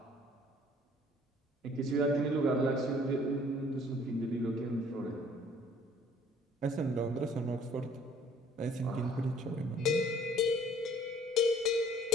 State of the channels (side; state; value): both; normal; correlation 0.55